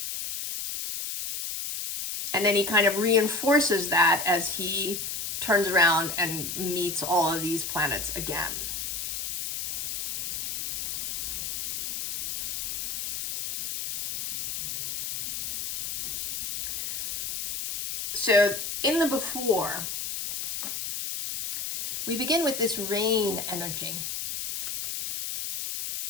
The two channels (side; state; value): left; noise; hiss, 4 dB below the sound